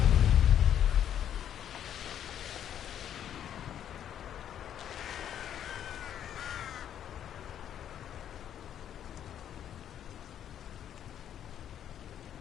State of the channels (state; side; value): quieter; right; 9.9 dB